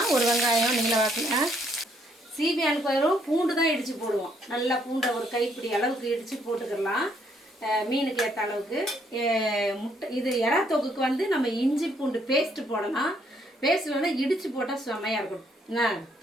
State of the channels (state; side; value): normal; both; correlation 0.69